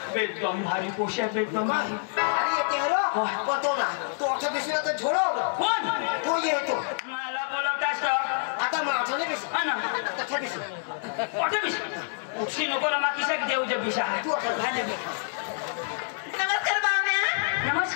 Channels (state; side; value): silent; right; digital silence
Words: एकदम भारी पोशा एकदम भारी अरे ये तेरो पतो ना तो अच्छा बिसला तर झोडो कोण तो येतो मला बोलवतास का आता माझं नाही बिस हा ना तथा बिस कुठे बिस उशी नको रमा किशाक देऊ जे बिसा तू आता घाण्या बिस नमस्कार पाहुण्या